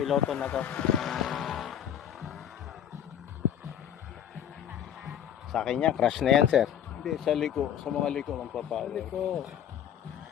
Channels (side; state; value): right; quieter; 9.7 dB